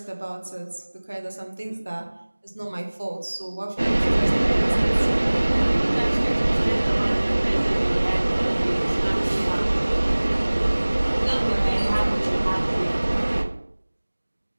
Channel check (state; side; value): inverted; both; correlation -1.00